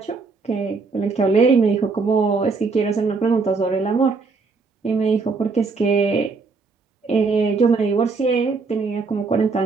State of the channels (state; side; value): quieter; left; 4.4 dB